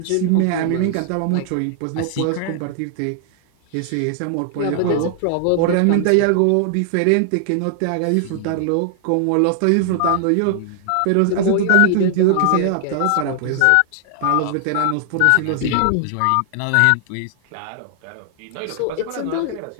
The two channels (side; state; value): both; different; correlation 0.00